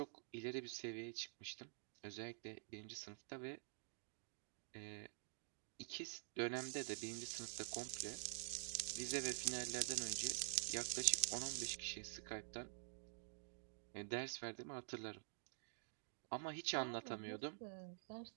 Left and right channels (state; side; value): silent; left; digital silence